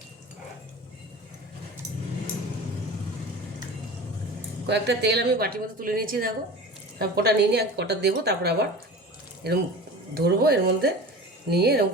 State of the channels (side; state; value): both; normal; correlation 0.36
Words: কয়েকটা তেল আমি বাটির মধ্যে তুলে নিয়েছি, দেখো। তারপর কটা নিয়ে নিয়ে কটা দেবো, তারপর আবার এরকম ধরবো, এর মধ্যে নিয়ে এরকম